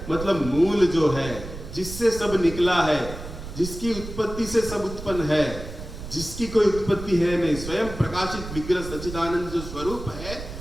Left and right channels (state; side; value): noise; right; rumble, 10 dB below the sound